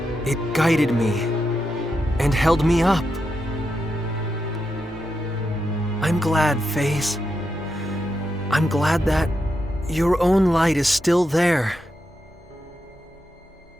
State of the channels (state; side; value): normal; both; correlation 0.85